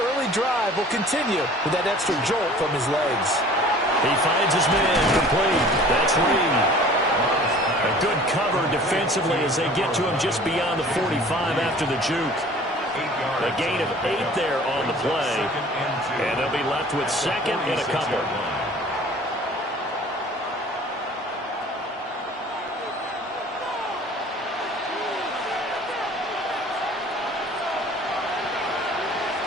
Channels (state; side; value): normal; both; correlation 0.48